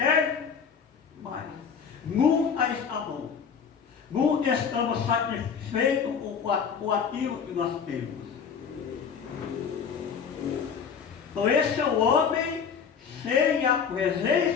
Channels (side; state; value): right; quieter; 6.6 dB